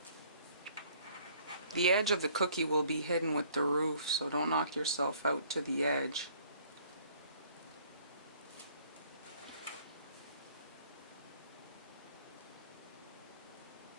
The edge of the cookie will be hidden with the roof, so don't knock yourself out to the edge.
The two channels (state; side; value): inverted; both; correlation -0.58